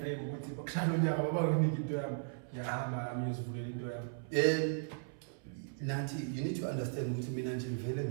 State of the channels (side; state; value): left; silent; 53 dB below the other